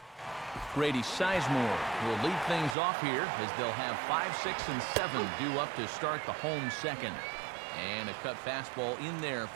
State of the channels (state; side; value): drops out; left; at 2.8 s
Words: Brady Seismore will lead things off here as they'll have 5, 6, and 7 due up to start the home second. And a cut fastball in there